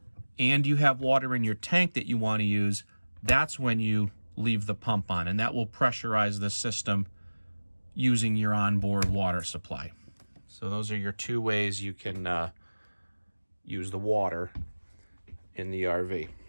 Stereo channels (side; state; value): both; inverted; correlation -1.00